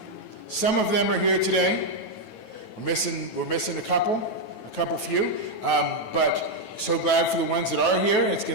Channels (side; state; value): right; late; 9.2 ms